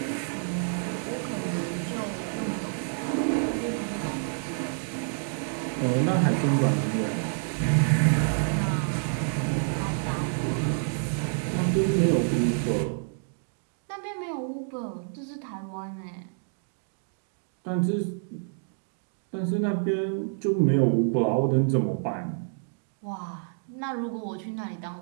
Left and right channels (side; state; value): left; silent; 59 dB below the other